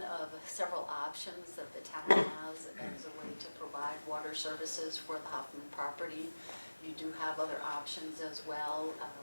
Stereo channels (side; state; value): both; inverted; correlation -1.00